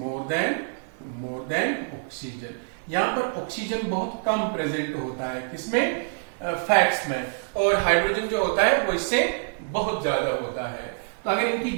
than oxygen. यहां पर ऑक्सीजन बहुत कम प्रेजेंट होता है। किसमें? फैट्स में, और हाइड्रोजन जो होता है वो इससे बहुत ज्यादा होता है। तो अगर इनकी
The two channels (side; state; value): left; silent; digital silence